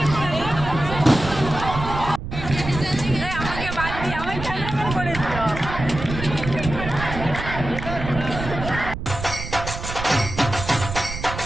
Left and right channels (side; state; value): right; noise; rumble, 7 dB below the sound